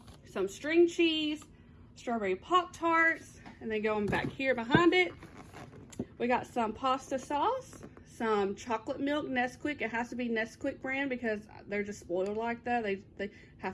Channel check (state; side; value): identical; both; correlation 1.00